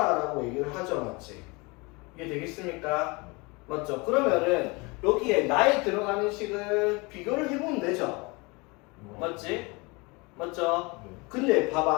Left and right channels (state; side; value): quieter; right; 26.9 dB